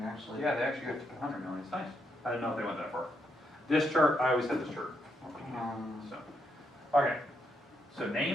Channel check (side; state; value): both; normal; correlation 0.79